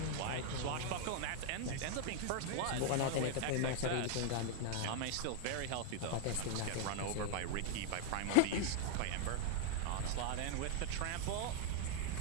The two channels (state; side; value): different; both; correlation 0.00